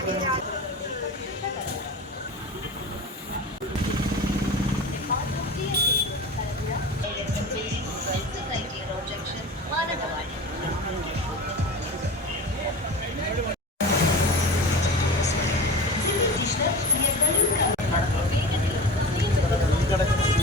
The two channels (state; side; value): normal; both; correlation 0.33